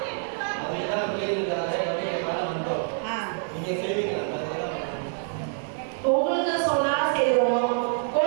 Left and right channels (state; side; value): silent; left; 61 dB below the other